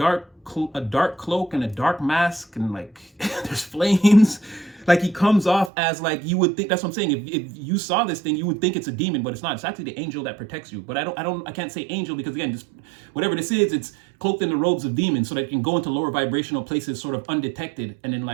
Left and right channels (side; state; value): left; drops out; at 5.7 s